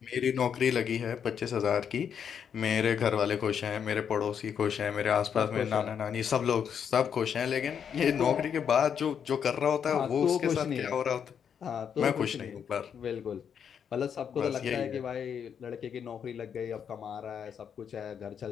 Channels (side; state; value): right; quieter; 7.8 dB